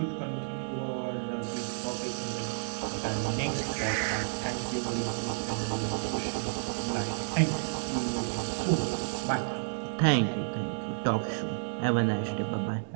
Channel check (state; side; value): silent; left; digital silence